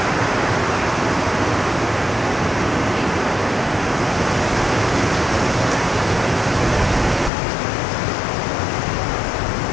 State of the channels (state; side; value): drops out; right; at 7.3 s